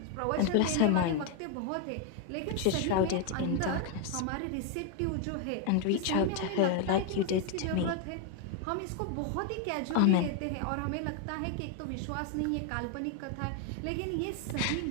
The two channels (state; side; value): different; both; correlation 0.01